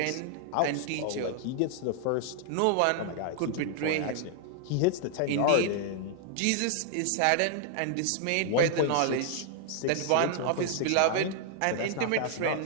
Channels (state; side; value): different; both; correlation 0.00